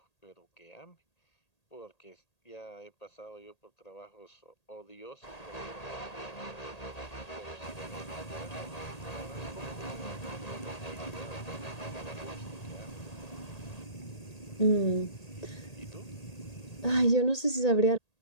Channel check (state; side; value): late; right; 1.8 ms